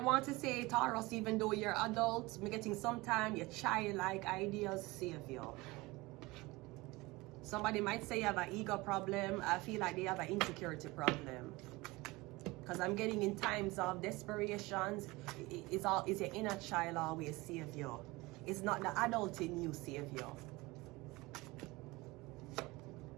to say, Taurus, even though you're adult, I'm getting sometime your childlike ideas save you. Somebody might say you have an ego problem. I feel like they have an insecurity problem. Because I'm getting in times of desperations, it's your inner child always save you. It's not the adult in you save you.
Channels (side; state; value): left; quieter; 22.1 dB